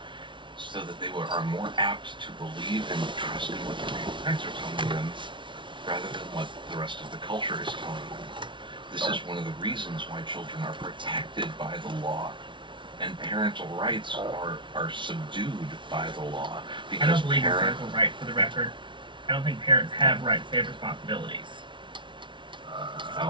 so that they are more apt to believe and trust in what their parents are telling them rather than what the rest of the culture is telling them. This is one of the reasons why children are protected by the law, and parental rights are subdued by the law. Because I don't believe in parental rights, for the record. I don't think parents have rights, they have responsibilities.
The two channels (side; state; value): left; late; 0.24 ms